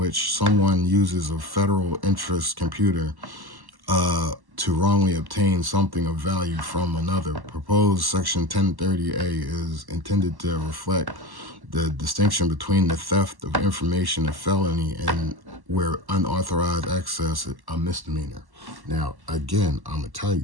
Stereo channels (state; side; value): late; left; 1.1 ms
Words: someone uses a federal interest computer to wrongly obtain something of value from another. Proposed section 1030A is intended to reflect the distinction between the theft of information a felony and where unauthorized access a misdemeanor. Now, again, I'm gonna tell